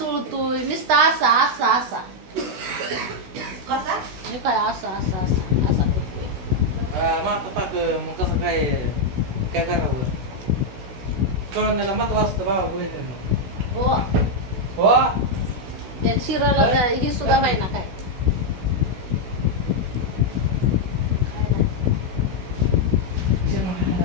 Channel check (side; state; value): left; late; 16 ms